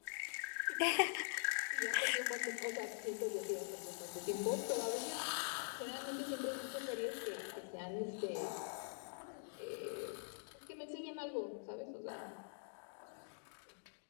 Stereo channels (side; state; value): right; silent; digital silence